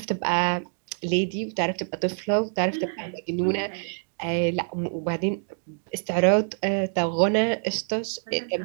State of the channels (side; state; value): left; silent; digital silence